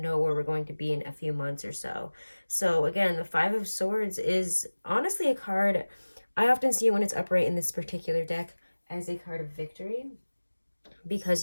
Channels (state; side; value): inverted; both; correlation -1.00